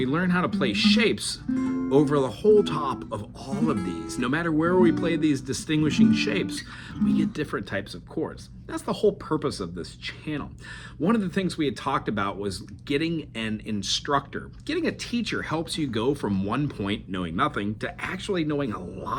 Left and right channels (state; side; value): identical; both; correlation 1.00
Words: learn how to play shapes over the whole top of all of these. No matter where we play these distinguishing shapes, we get different types of chords. That's the whole purpose of this channel. One of the things we had talked about was getting an instructor. Getting a teacher helps you go from one point, knowing nothing, to actually knowing a